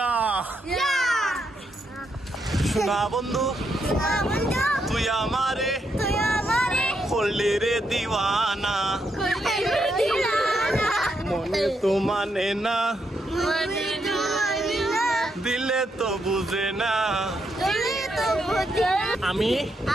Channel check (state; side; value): normal; both; correlation 0.80